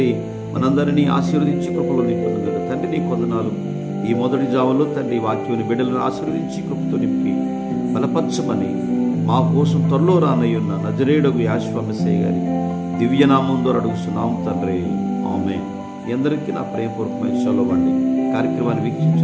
మనందరినీ ఆశీర్వదించి కృపలో నింపుతుంది. తండ్రి నీ కొందనాలు. ఈ మొదటి జావలో తండ్రి వాక్యాన్ని బిడ్డలను ఆశీర్వదించి కృపతో నింపి బలపరచమని మా కోసం త్వరలో రానయ్యున్న నజరేయుడగు యేసు మెస్సయ్య గారి దివ్యనామం ద్వారా అడుగుతున్నాం తండ్రి, ఆమేన్. మీ అందరికీ నా ప్రేమపూర్వకమైన షలోమ్ అండి. కార్యక్రమాన్ని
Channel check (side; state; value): both; identical; correlation 1.00